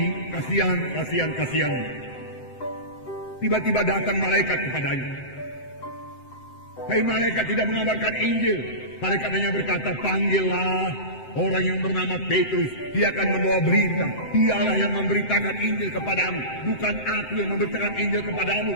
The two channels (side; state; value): right; late; 7.8 ms